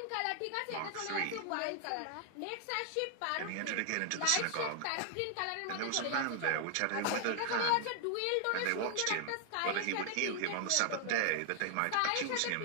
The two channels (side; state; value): both; different; correlation 0.00